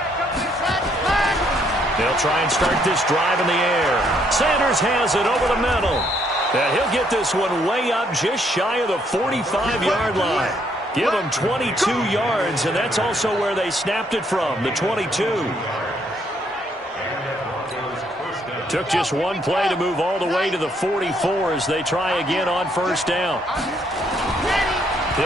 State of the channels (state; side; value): normal; both; correlation 0.70